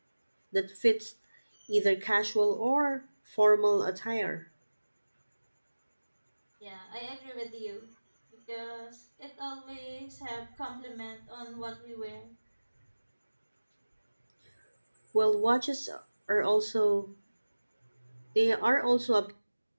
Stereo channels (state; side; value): inverted; both; correlation -1.00